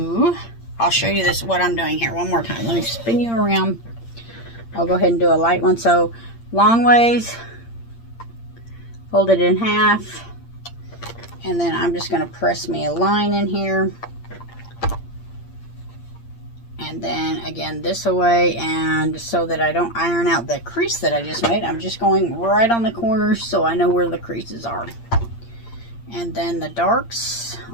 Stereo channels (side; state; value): right; late; 8.7 ms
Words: I'll show you this, what I'm doing here one more time. Let me spin you around. I'll go ahead and do a light one. So, long ways, fold it in half, and then I'm just going to press me a line in here. And then again this away, and so that I don't iron out the crease that I just made, I'm just going right on the corners so I know where the creases are. And then the darks